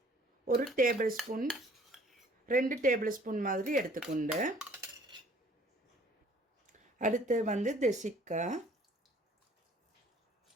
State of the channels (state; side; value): normal; both; correlation 0.55